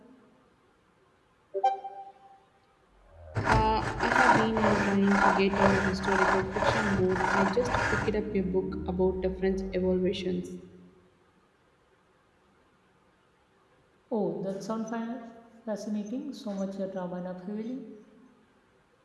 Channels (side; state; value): both; identical; correlation 1.00